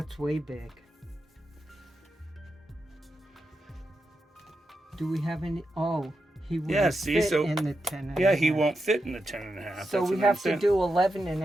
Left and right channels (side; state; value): both; normal; correlation 0.87